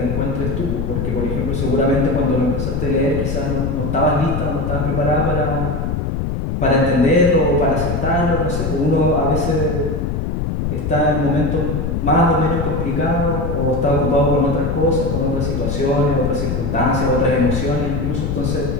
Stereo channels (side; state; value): left; noise; rumble, 1 dB below the sound